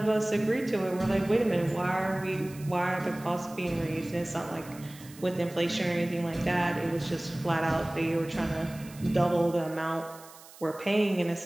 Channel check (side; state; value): right; noise; hiss, 20 dB below the sound